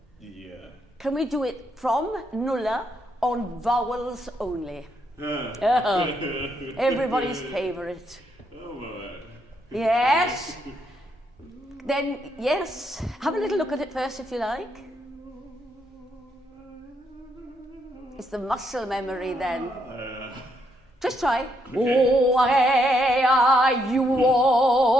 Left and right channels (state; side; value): normal; both; correlation 0.76